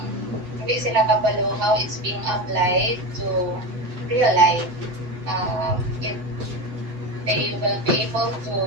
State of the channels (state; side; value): late; left; 7.7 ms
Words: hindi sila kabalo how it's being applied to real life. They will be able to